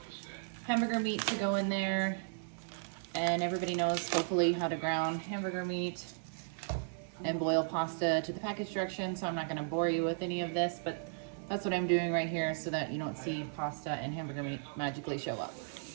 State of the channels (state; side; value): silent; left; 54 dB below the other